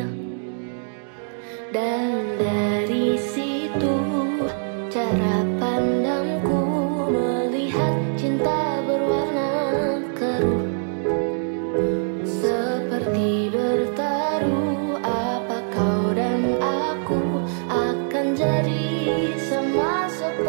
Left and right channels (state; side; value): silent; left; digital silence